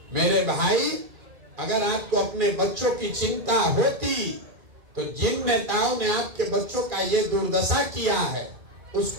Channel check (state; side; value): late; left; 2.4 ms